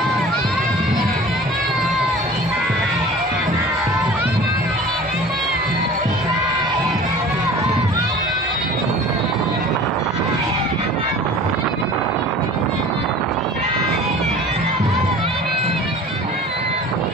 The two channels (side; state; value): both; normal; correlation 0.42